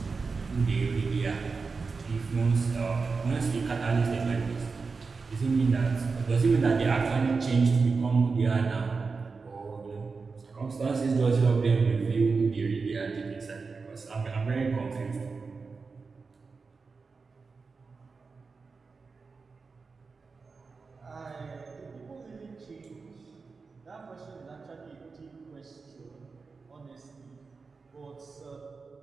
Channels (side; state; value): left; quieter; 4.5 dB